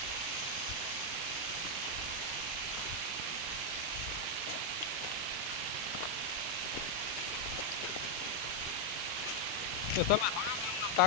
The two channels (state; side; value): normal; both; correlation 0.00